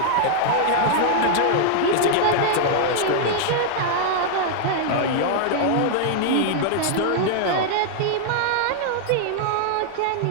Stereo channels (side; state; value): both; different; correlation -0.01